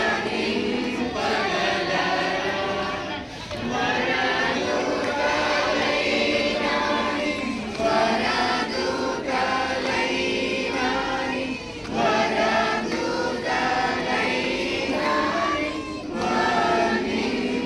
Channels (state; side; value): identical; both; correlation 1.00